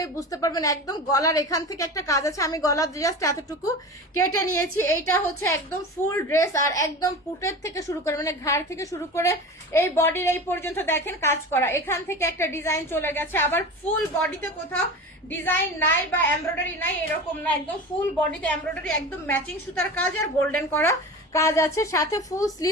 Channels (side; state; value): both; normal; correlation 0.31